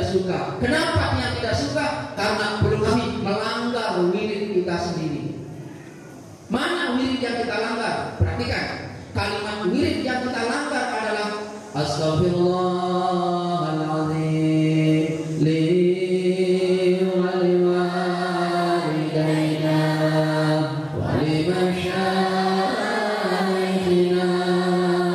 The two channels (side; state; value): both; identical; correlation 1.00